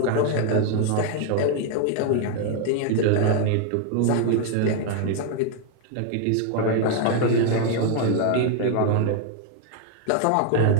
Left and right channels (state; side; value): different; both; correlation 0.00